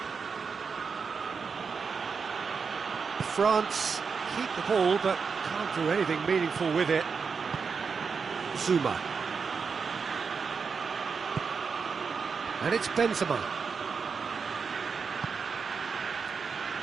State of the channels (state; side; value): quieter; left; 5.5 dB